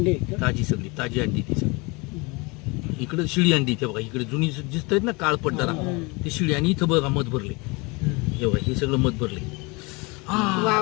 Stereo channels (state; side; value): quieter; right; 27.2 dB